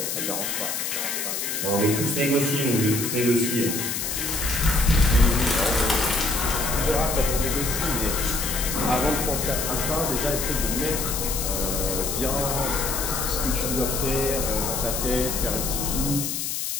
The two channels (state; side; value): noise; left; hiss, 2 dB below the sound